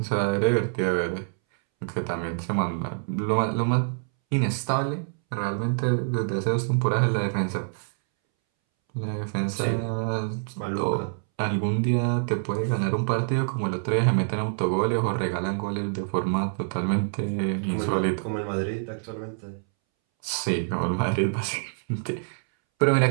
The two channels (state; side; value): silent; left; 61 dB below the other